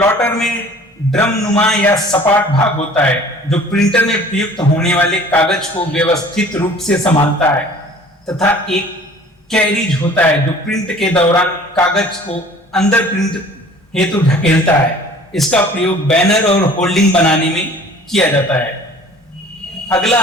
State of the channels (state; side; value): normal; both; correlation 0.49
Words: में ड्रम नुमा या सपाट भाग होता है जो प्रिंटर में प्रयुक्त होने वाले कागज को व्यवस्थित रूप से संभालता है तथा एक कैरिज होता है जो प्रिंट के दौरान कागज को अंदर प्रिंट हेतु ढकेलता है। इसका प्रयोग बैनर और होल्डिंग बनाने में किया जाता है। अगला